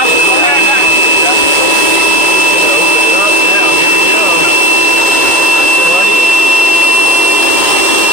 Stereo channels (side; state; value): left; late; 2.2 ms